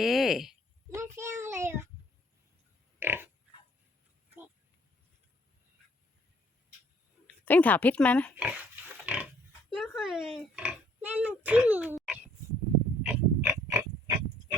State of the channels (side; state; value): both; normal; correlation 0.61